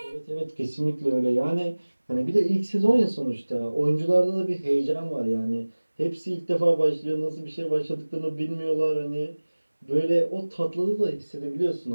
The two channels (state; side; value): inverted; both; correlation -1.00